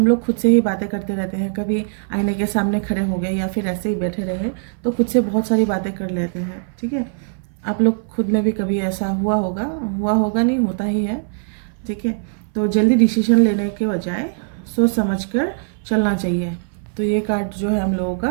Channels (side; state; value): left; silent; 59 dB below the other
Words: लोग खुद से ही बातें करते रहते हैं। कभी आईने के सामने खड़े हो गए या फिर ऐसे ही बैठे रहे तो खुद से बहुत सारी बातें कर लेते हैं। ठीक है, आप लोग खुद में भी कभी ऐसा हुआ होगा नहीं, होता ही है। ठीक है, तो जल्दी डिसीजन लेने के बजाय सोच समझ कर चलना चाहिए। तो ये कार्ड जो है हम लोगों का,